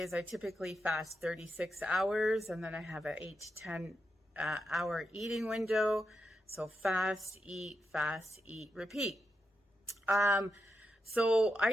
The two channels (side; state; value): both; normal; correlation 0.86